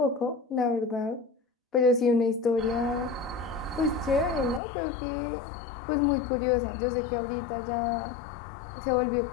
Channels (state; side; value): drops out; right; at 4.6 s